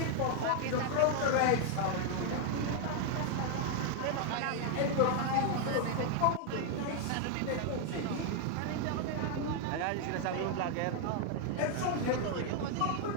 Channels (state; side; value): different; both; correlation 0.00